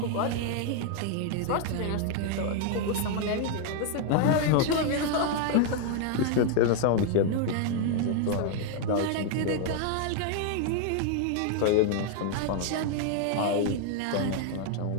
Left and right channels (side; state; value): both; different; correlation 0.00